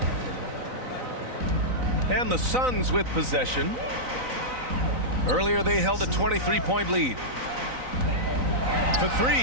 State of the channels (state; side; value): late; left; 3.9 ms